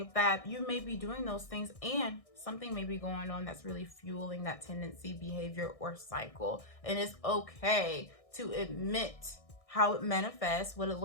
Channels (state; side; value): late; right; 1.6 ms